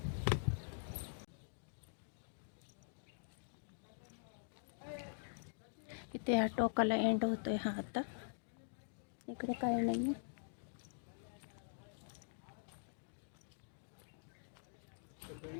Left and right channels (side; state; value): right; silent; digital silence